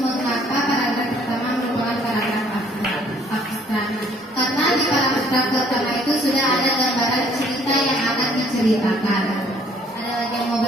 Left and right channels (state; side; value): normal; both; correlation 0.61